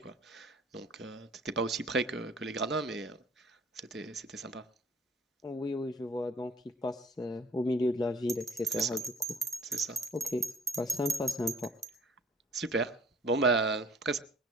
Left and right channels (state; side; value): normal; both; correlation 0.52